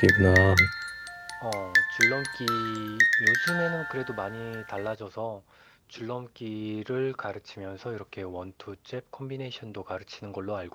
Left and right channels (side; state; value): both; identical; correlation 1.00